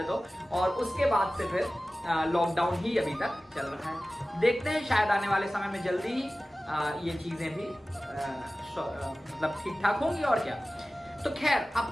तो, और उसके बाद से फिर लॉकडाउन ही अभी तक चल रहा है। देखते हैं शायद आने वाले समय में जल्दी ही ये चीज़ें भी मतलब ठीक ठाक होंगी, और क्या। तो खैर,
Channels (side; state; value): both; normal; correlation 0.96